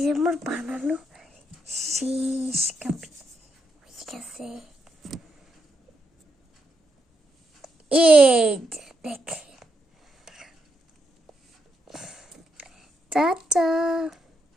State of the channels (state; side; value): normal; both; correlation 0.80